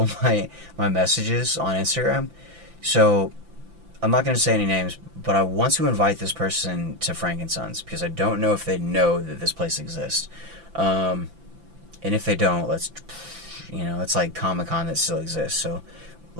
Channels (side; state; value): left; late; 5.9 ms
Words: of my messages on Instagram. So, I'm not going to say any names, but I want to invite this person to Frank and Sons, because I don't know if they know that this place exists. And if they don't, let's, you know, it's like Comic-Con that still exists, so